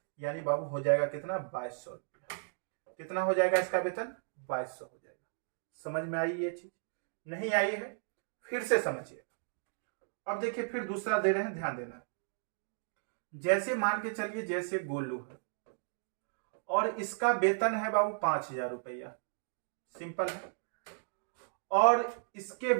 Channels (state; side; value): silent; left; digital silence